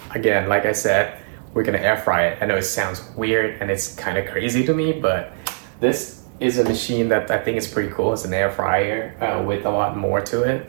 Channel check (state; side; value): silent; left; digital silence